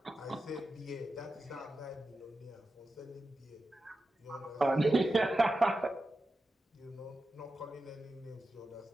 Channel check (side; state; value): both; normal; correlation 0.91